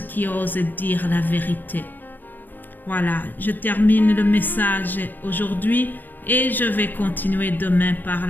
osent dire la vérité. Voilà, je termine le message aujourd'hui et je vais continuer demain par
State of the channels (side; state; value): right; late; 0.091 ms